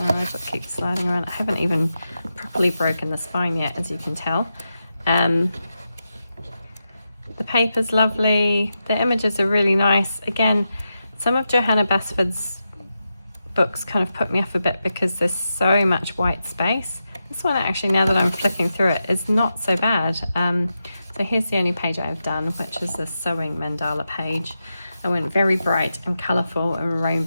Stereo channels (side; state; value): both; inverted; correlation -0.88